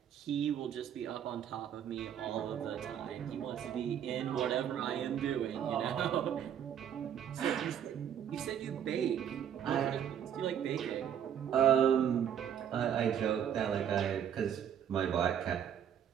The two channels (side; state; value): left; quieter; 9.2 dB